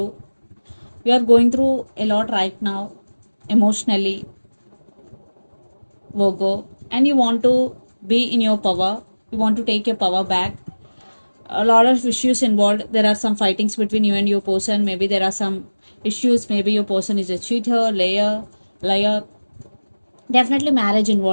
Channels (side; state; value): both; inverted; correlation -1.00